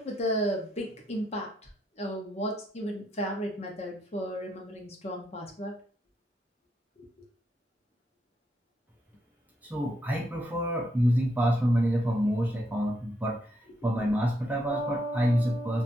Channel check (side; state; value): both; normal; correlation 0.78